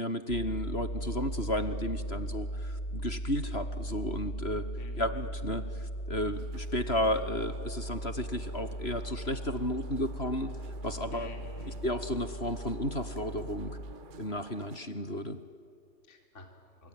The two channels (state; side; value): late; right; 3.0 ms